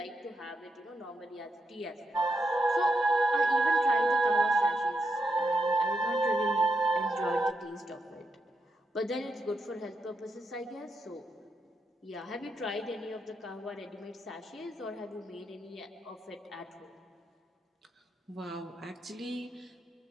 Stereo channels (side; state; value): both; normal; correlation 0.83